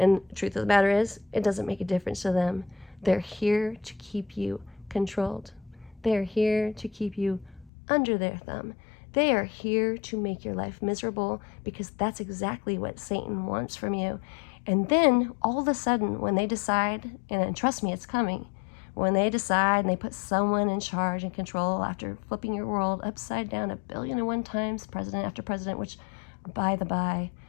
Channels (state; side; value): drops out; right; at 7.7 s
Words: the truth of the matter is, it doesn't make a difference to them. They're here to keep you controlled. They're here to keep you under their thumb. They are here to make your life miserable, because that's exactly what Satan wants from you. And then all of a sudden, when they decide, and trust me, it's coming, when they decide and they put someone in charge and control after flipping your world upside down 1,000,001 times, president after president, which, by the by,